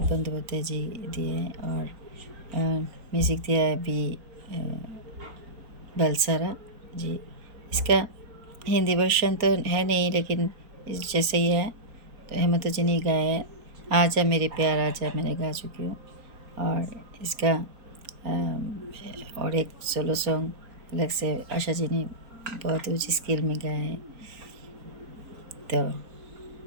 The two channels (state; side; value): late; left; 4.4 ms